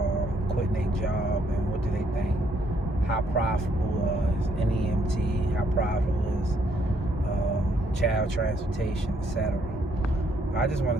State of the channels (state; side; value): normal; both; correlation 0.70